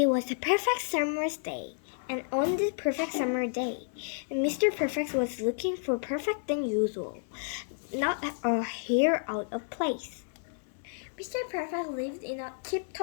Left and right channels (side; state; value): right; silent; 57 dB below the other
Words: was a perfect summer's day, and on this perfect summer day, Mr. Perfect was looking for perfect than usual, not a hair out of place. Mr. Perfect lived in a